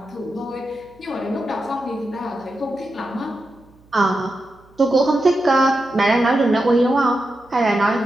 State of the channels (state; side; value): noise; right; hum, 29 dB below the sound